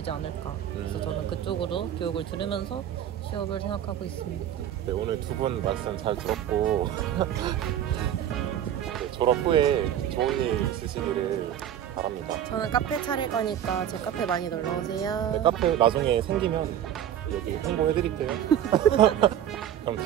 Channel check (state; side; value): quieter; left; 10.6 dB